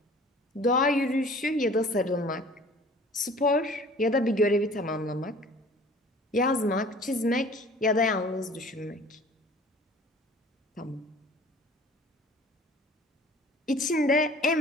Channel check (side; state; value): both; normal; correlation 0.48